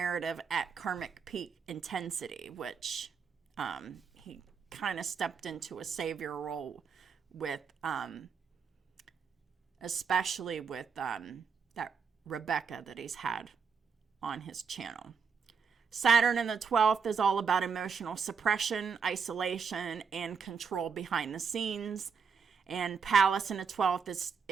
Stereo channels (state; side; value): quieter; left; 6.0 dB